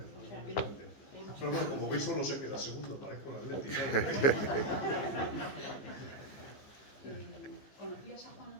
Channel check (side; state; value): right; late; 15 ms